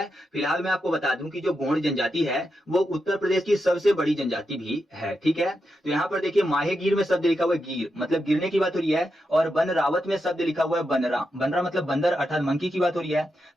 फिलहाल मैं आपको बता दूं कि जो गोंड जनजाति है वो उत्तर प्रदेश की सबसे बड़ी जनजाति भी है। ठीक है, तो यहाँ पर देखिए माहे गिर में शब्द लिखा हुआ है गिर, मतलब गिरने की बात हो रही है। और वन रावत में शब्द लिखा हुआ है बनरा। बनरा मतलब बंदर अर्थात मंकी की बात हो रही है।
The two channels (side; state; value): both; normal; correlation 0.86